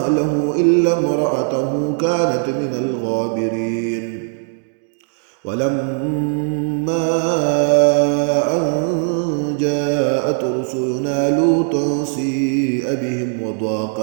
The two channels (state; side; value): silent; left; 67 dB below the other